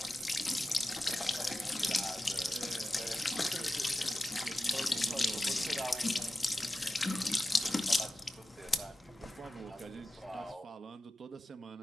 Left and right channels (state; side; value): normal; both; correlation 0.94